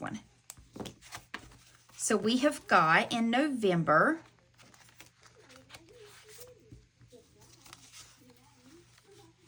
So we have got in November,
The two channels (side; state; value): both; identical; correlation 1.00